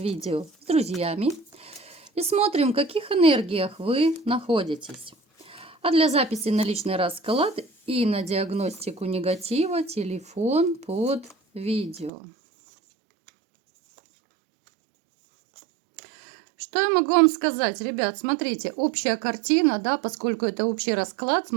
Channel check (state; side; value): drops out; left; at 12.1 s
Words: с друзьями и смотрим, в каких энергиях вы находитесь. А для записи на личный расклад и на диагностику негатива телефон под видео. Что я могу вам сказать, ребят? Смотрите, общая картина, да, поскольку это общий расклад,